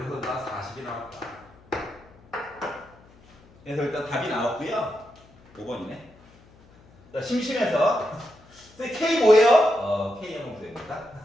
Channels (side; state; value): left; noise; hum, 27 dB below the sound